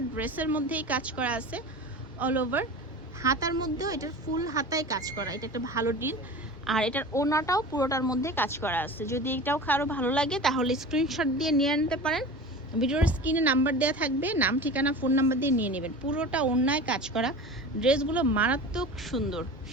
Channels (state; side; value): normal; both; correlation 0.34